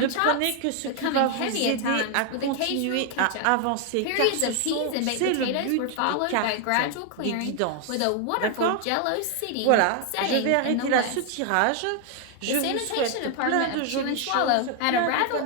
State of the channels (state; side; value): different; both; correlation 0.00